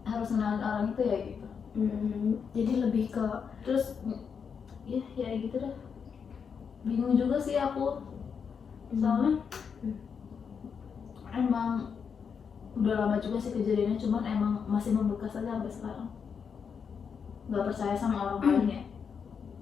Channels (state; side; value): quieter; right; 6.5 dB